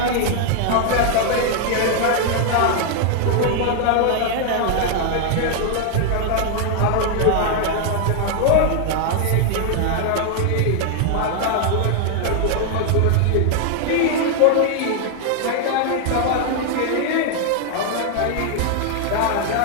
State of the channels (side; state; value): both; different; correlation 0.00